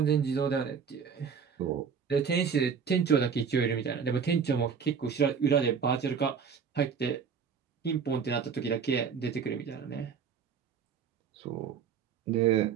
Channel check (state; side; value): quieter; left; 6.5 dB